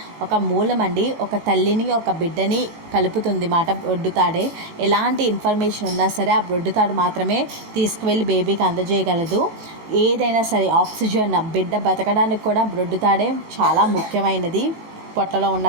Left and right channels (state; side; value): late; left; 19 ms